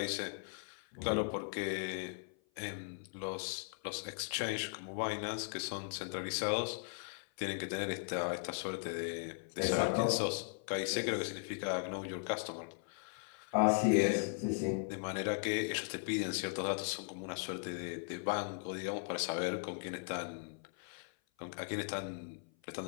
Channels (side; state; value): right; silent; 52 dB below the other